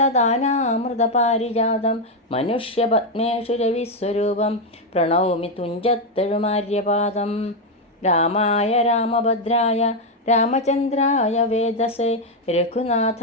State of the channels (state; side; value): normal; both; correlation 0.04